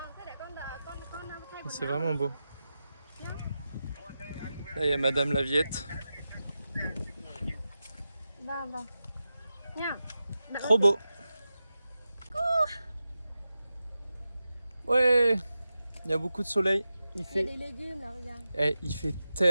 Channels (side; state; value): both; inverted; correlation -0.92